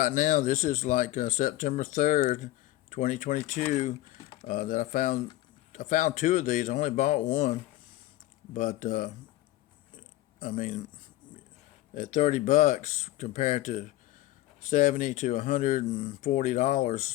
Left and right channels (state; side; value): quieter; right; 15.7 dB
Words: now, this is like September 3rd, 2022, that I found two of these. I only bought one, but I mean, at $30 compared to $70 to